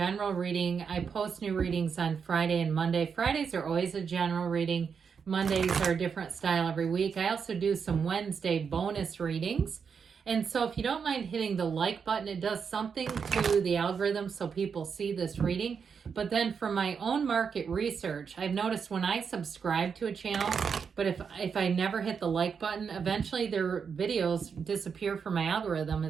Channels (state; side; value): quieter; left; 6.3 dB